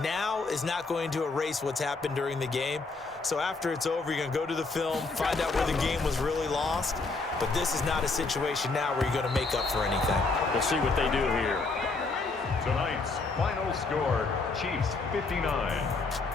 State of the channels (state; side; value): quieter; right; 3.8 dB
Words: now is not going to erase what's happened during the game. So after it's over, you're going to go to the film, find out where the game was really lost. But this is not a situation now where you're going to make up for anything. We'll see what they do here. Tonight's final score, Chiefs 59,